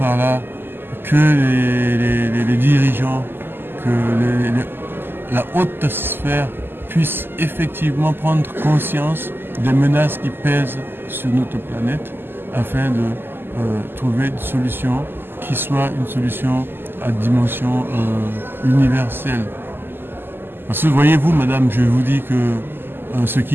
là que les dirigeants, que la haute sphère puisse effectivement prendre conscience des menaces qui pèsent sur notre planète afin de trouver une solution qui soit une solution à dimension universelle. Parce que voyez-vous, madame, je vous dis que ce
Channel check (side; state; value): left; late; 0.099 ms